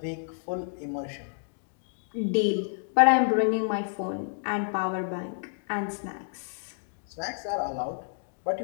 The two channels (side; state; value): right; silent; digital silence